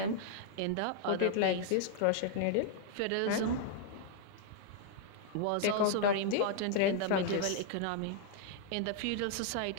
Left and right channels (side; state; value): both; different; correlation -0.01